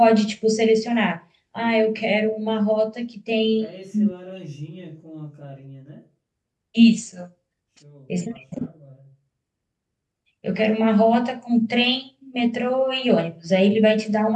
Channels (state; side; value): identical; both; correlation 1.00